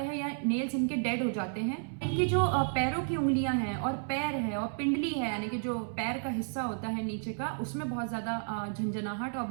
है या नेल्स इनके डेड हो जाते हैं। इनकी जो पैरों की उंगलियां हैं और पैर है और पिंडली है, यानी कि जो पैर का हिस्सा होता है नीचे का, उसमें बहुत ज्यादा झंझनाहट और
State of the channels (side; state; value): left; silent; 56 dB below the other